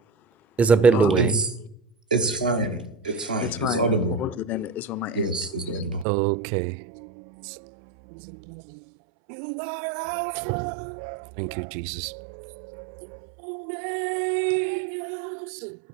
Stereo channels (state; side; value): drops out; left; at 6.1 s